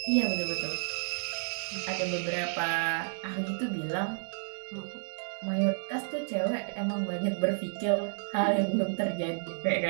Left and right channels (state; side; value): silent; left; 57 dB below the other